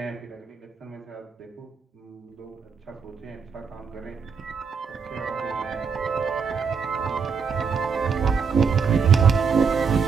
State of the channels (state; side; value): quieter; left; 5.8 dB